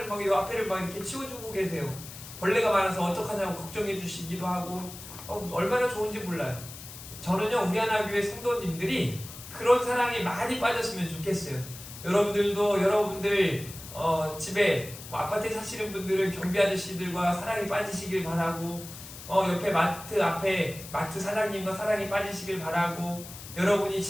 막 이 앞에를 막 이렇게 치워주고 계세요. 벌레가 많아서 어떡하냐고 걱정해 주시기도 하고, 얼마나 좋은지 몰라요. 저는요, 우리 하나 교회 성도님들이 그런 사랑에 많이 빠졌으면 좋겠어요. 여러분들도 여러분들 집에 아파트에 사시는 분들은 경비 아저씨들과 사랑에 빠지시길 바라고, 옆에 마트 사장님과 사랑에 빠지시길 바라고, 여러분이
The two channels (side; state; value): left; noise; hiss, 14 dB below the sound